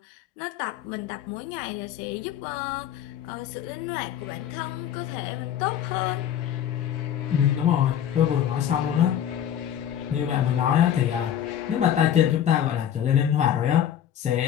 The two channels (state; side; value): quieter; right; 10.0 dB